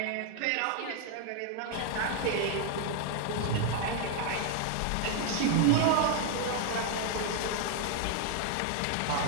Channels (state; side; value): different; both; correlation 0.00